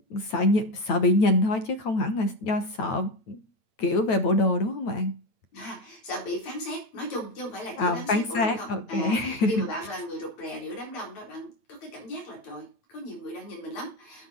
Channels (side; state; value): right; late; 9.1 ms